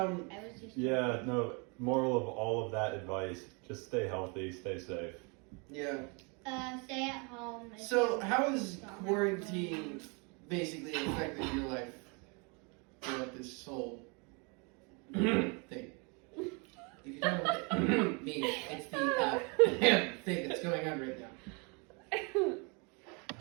was just Yeah, no. Moral of all of that advice: just stay healthy, stay safe. Yeah. stay at home. if So you how has don't have quarantine basically affected your life throughout this whole thing? If you don't know what it means, it's the thing that's going on right now.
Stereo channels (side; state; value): left; quieter; 32.5 dB